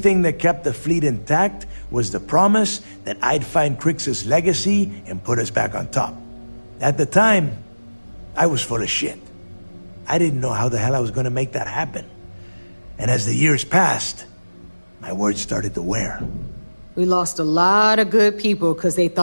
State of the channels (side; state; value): both; inverted; correlation -1.00